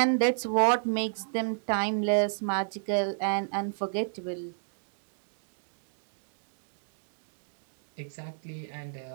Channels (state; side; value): silent; left; digital silence